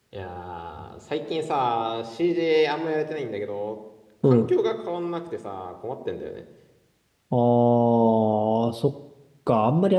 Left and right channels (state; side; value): identical; both; correlation 1.00